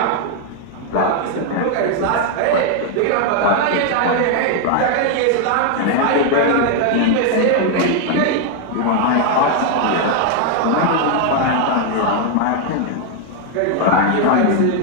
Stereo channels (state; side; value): different; both; correlation 0.00